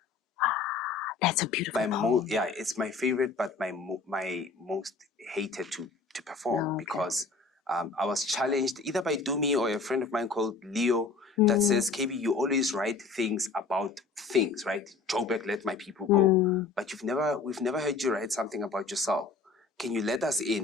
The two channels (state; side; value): quieter; right; 4.4 dB